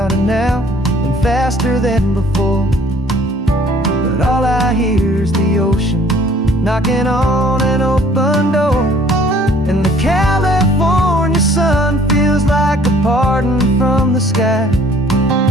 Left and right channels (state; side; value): normal; both; correlation 0.56